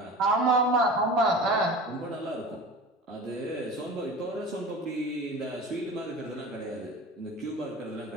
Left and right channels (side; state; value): both; normal; correlation 0.36